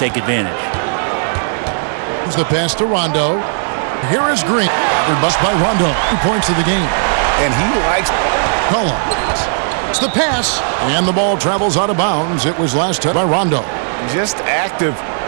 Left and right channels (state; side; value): silent; left; digital silence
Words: advantage. The pass to Rondo. Here is Green. Covered bust by Rondo. 2 points of the game. And he likes Cullen. It's the pass. And the ball travels out of bounds. It was last touched by Rondo. just active